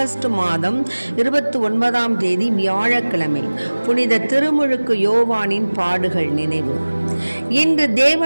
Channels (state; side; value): inverted; both; correlation -1.00